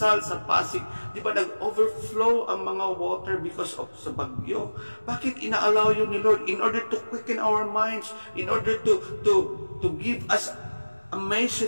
sa Pasig? Di ba nag-overflow ang mga water because of sa bagyo? Bakit ina-allow yun ni Lord? In order to quicken our minds, in order to give us a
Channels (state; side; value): inverted; both; correlation -1.00